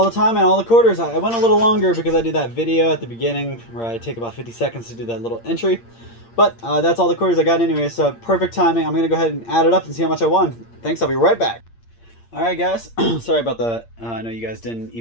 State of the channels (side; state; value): right; late; 8.7 ms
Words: the time and all the quarters. I went a little longer because I did that video at the beginning where I take about 50 seconds to do that little entry. But that's all the quarters I got anyway, so perfect timing. I'm going to go ahead and add it up and see how much I won. Thanks, I'll be right back. Alright guys, sorry about the, I know you guys didn't